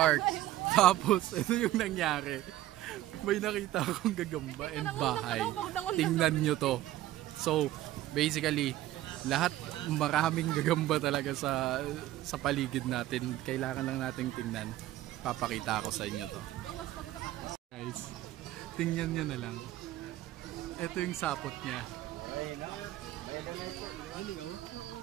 tapos ito yung nangyari, may nakita akong gagamba and bahay. Tingnan nyo to. So basically lahat maraming gagamba talaga sa paligid natin. Kailangan lang nating tingnan. Papakita ko sa inyo to. Guys, tingnan nyo na lang. Ito yung sapot niya.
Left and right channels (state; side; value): quieter; left; 14.8 dB